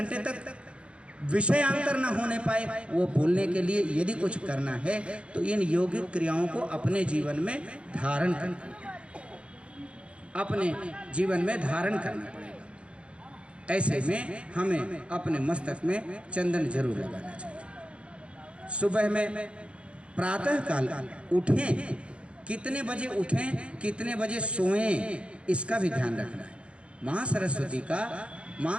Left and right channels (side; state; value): left; late; 0.059 ms